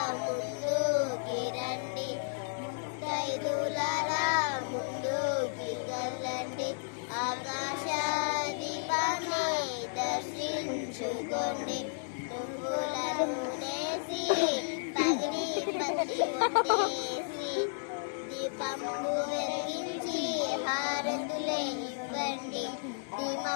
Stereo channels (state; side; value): silent; right; digital silence